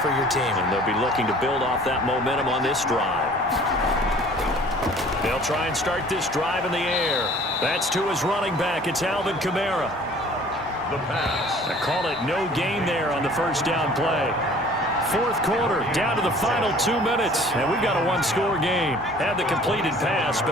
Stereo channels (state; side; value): normal; both; correlation 0.50